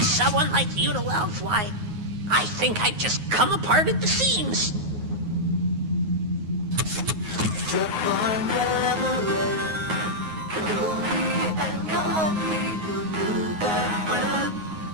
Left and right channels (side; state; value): left; late; 9.5 ms